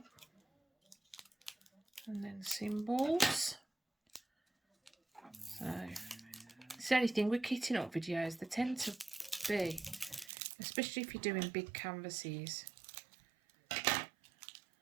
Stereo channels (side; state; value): left; drops out; at 10.3 s